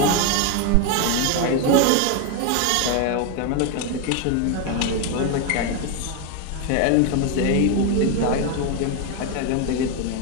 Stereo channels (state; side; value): different; both; correlation 0.01